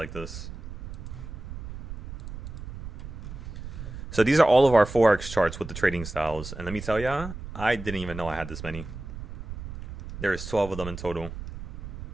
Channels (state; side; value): noise; right; rumble, 10 dB below the sound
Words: this. So these are all of our Forex charts with the trading styles. And let me tell ya, I didn't even know I had this many. There's 12 of them in total.